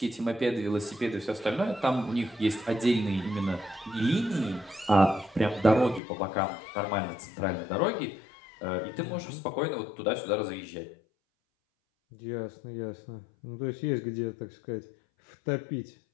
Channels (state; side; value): drops out; right; at 6.0 s